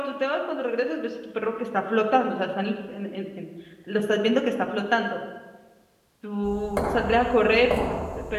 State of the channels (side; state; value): both; identical; correlation 1.00